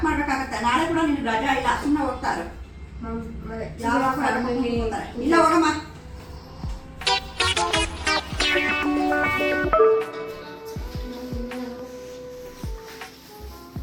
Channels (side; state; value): both; identical; correlation 1.00